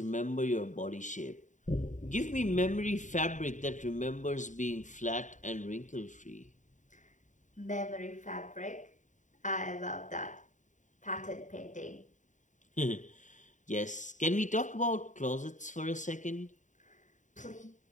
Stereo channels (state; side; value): late; right; 0.36 ms